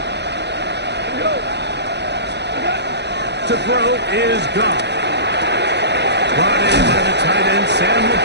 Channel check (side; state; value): left; late; 0.50 ms